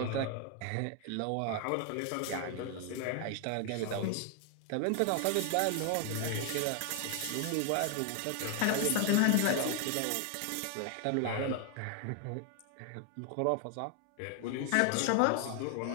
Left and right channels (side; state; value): both; different; correlation 0.01